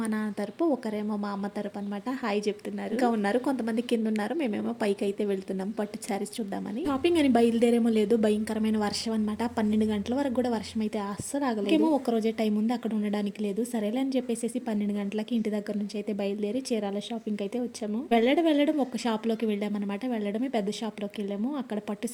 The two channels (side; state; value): both; identical; correlation 1.00